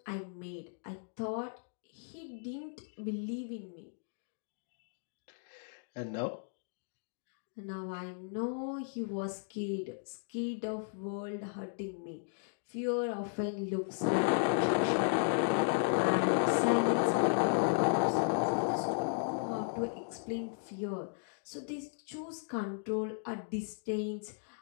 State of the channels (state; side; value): silent; right; digital silence